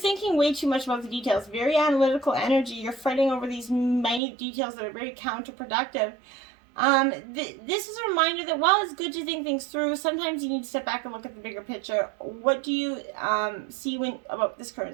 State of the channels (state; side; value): drops out; left; at 4.2 s